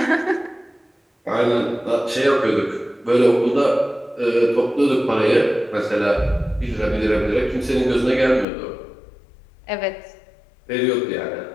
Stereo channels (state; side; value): drops out; right; at 8.5 s